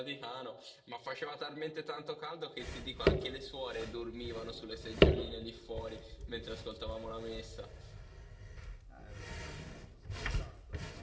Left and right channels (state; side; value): identical; both; correlation 1.00